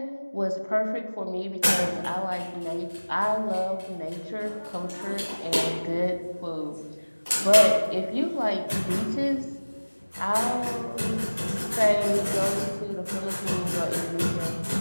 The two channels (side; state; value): both; inverted; correlation -1.00